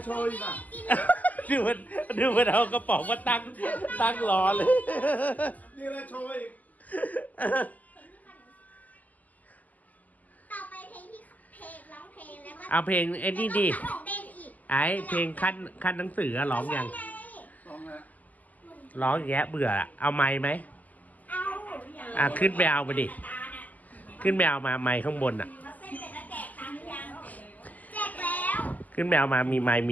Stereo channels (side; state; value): right; late; 0.079 ms